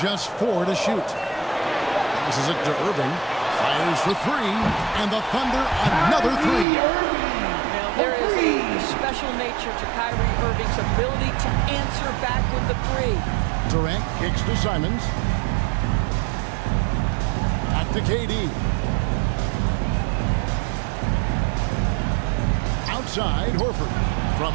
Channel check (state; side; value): drops out; left; at 6.7 s